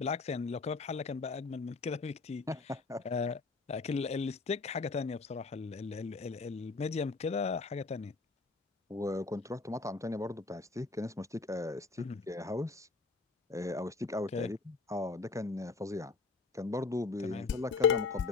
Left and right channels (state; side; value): quieter; right; 4.2 dB